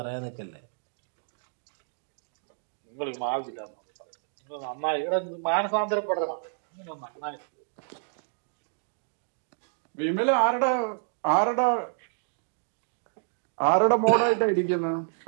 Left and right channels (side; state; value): left; silent; digital silence